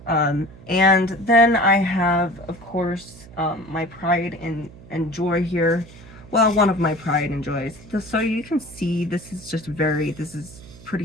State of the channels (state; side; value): noise; right; hum, 19 dB below the sound